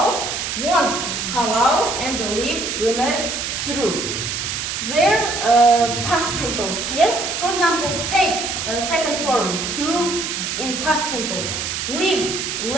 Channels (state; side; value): noise; right; hiss, 3 dB below the sound